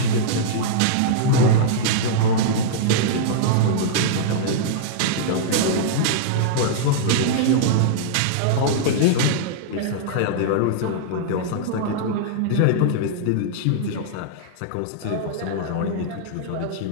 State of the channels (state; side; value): different; both; correlation -0.02